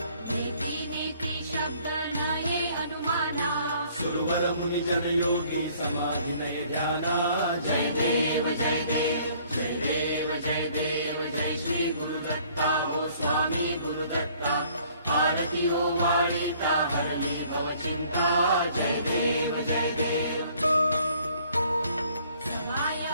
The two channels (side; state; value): both; inverted; correlation -0.59